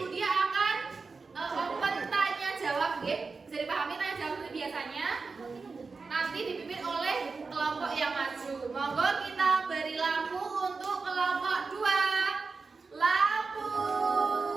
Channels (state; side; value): quieter; left; 4.4 dB